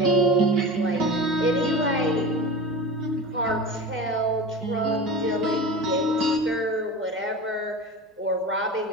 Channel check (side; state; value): both; normal; correlation 0.31